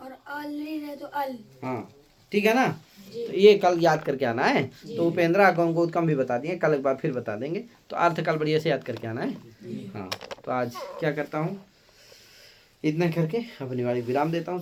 और आल री रहे तो अल। हाँ ठीक है ना। तो ये कल याद करके आना है। तो उपेंद्रा को गौतम भी बता दिए, कल एक बार फिर बता देंगे। तो अर्थ कल बढ़िया से याद करके आना है। हाँ तो आज क्या करता हूँ, इतना करके अपनी वाली विराम देता हूँ।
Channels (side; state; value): both; identical; correlation 1.00